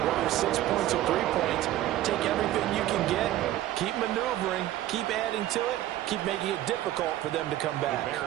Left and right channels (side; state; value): left; quieter; 14.0 dB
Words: Whether 6 points or 3 points, take everything you can get, keep maneuvering, keep adding to it, keep making it difficult for them to come back.